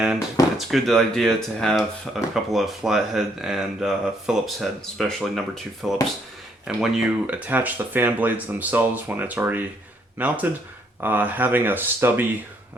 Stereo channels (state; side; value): normal; both; correlation 0.70